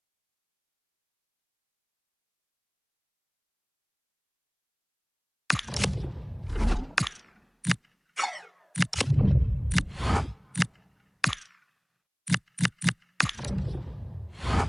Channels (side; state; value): both; identical; correlation 1.00